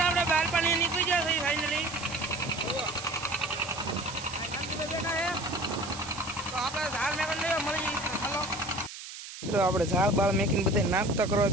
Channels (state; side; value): noise; right; hiss, 12 dB below the sound